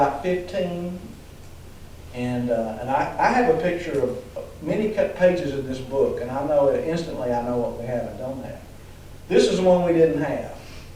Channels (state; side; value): identical; both; correlation 1.00